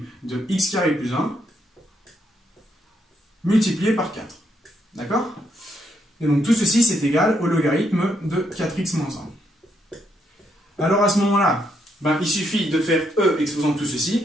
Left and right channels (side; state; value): both; normal; correlation 0.76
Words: de x carré plus 1 multiplié par 4. D'accord? Et donc, tout ceci, c'est égal au logarithme de 4x moins 1. Alors, à ce moment-là, il suffit de faire e exposant tout